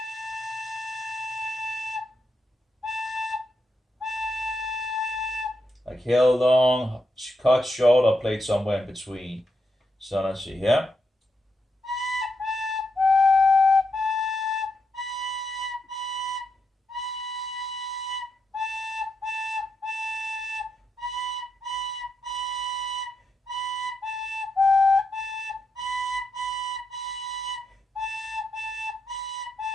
held long, cut short, or played somewhere in between. So let's see here.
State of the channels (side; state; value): both; normal; correlation 0.83